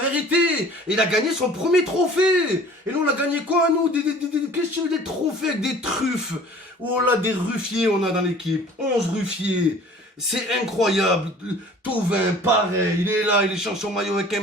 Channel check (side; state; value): both; normal; correlation 0.48